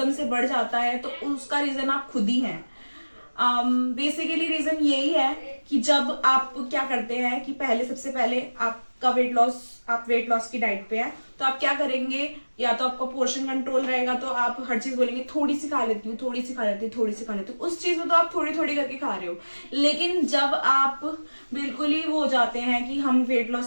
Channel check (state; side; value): inverted; both; correlation -1.00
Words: से बढ़ जाता है, तो उसका रीजन आप खुद ही हैं। बेसिकली रीजन यही है कि जब आप क्या करते हैं कि सबसे पहले आपका आप वेट लॉस की डाइट पे है, तो आप क्या करेंगे, या तो आपका पोर्शन कंट्रोल रहेगा तो आप हर चीज बोलेंगे थोड़ी सी खा लेती हूँ, थोड़ी सी खा लेती हूँ, थोड़ी सी खा लेती हूँ। उस चीज में तो आप थोड़ी थोड़ी करके खा रहे हो। लेकिन जब आप बिल्कुल ही वो हो जाते हैं कि हम वेट